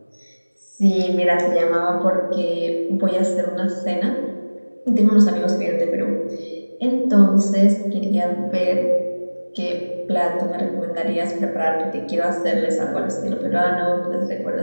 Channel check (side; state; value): both; inverted; correlation -1.00